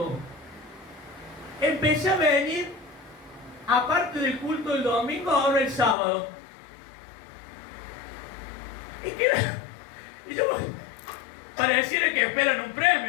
empecé a venir aparte del culto del domingo, ahora el sábado. Y yo pareciera que esperan un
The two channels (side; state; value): right; drops out; at 6.0 s